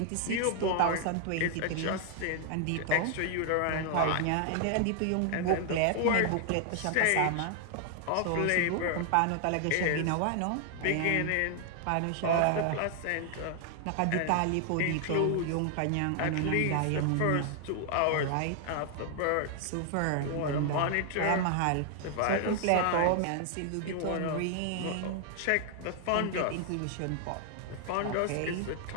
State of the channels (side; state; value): both; different; correlation 0.00